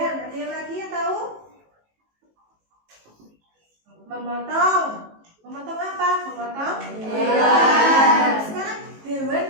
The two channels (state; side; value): late; left; 19 ms